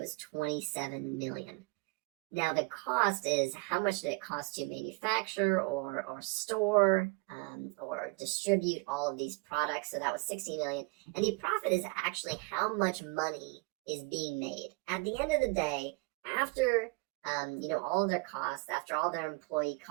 27 million. Now the cost is how much did it cost to manufacture or store or distribute all of these products. So that was 60 million. And the profit is actually how much money is being made. At the end of the day, after all of their costs, after all their employee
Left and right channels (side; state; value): left; quieter; 28.2 dB